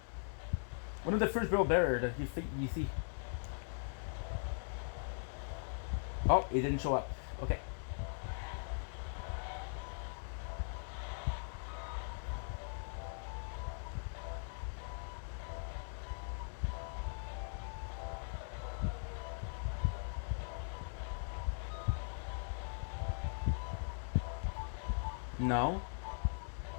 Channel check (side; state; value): right; silent; digital silence